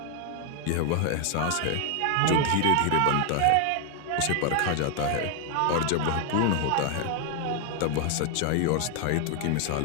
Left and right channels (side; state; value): both; different; correlation 0.00